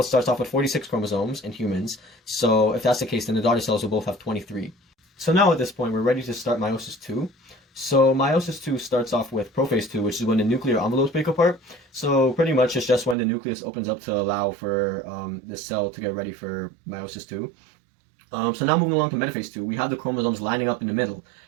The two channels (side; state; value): left; drops out; at 13.2 s